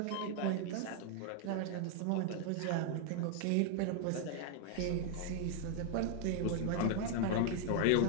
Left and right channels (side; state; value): both; different; correlation 0.00